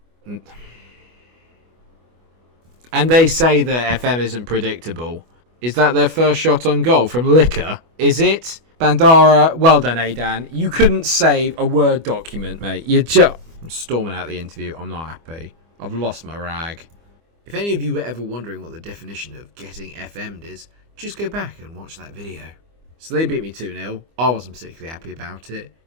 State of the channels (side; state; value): left; late; 25 ms